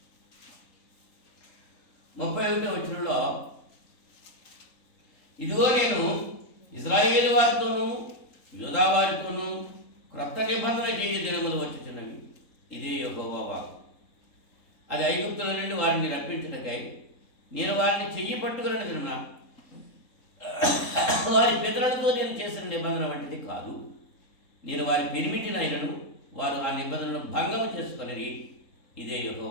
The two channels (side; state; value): right; late; 3.8 ms